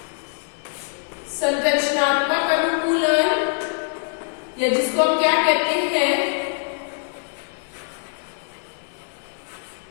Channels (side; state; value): right; silent; digital silence